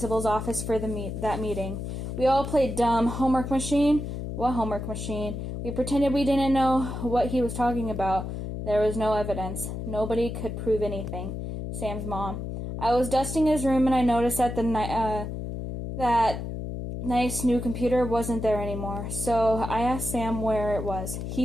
office for that meeting. We all played dumb. Homework machine? What homework machine? We pretended we didn't know what he was talking about. There was no evidence. Nobody could prove anything. Sam's mom. I was dusting his room and I noticed that that nice new computer wasn't there anymore. So I asked Sam where it was.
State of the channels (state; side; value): noise; left; hum, 5 dB below the sound